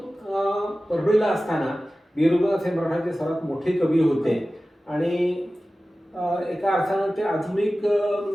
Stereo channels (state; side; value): normal; both; correlation 0.96